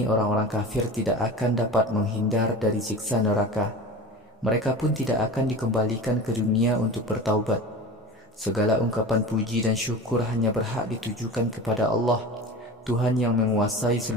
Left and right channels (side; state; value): both; normal; correlation 0.33